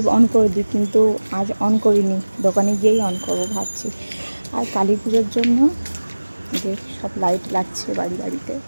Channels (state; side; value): inverted; both; correlation -1.00